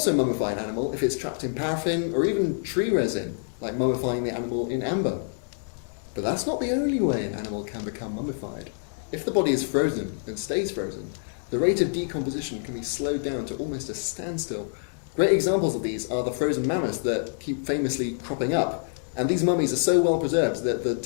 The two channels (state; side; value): silent; right; digital silence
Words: mummify an animal if it's trapped in paraffin or even tree resin, like mummifying the animal in amber. But that's not the only way an animal can become mummified. If the body is frozen and stays frozen, the rate of decomposition can be slowed down to almost a standstill. Great examples of these are the frozen mammoths that keep famously cropping up, and these mummies are so well preserved that the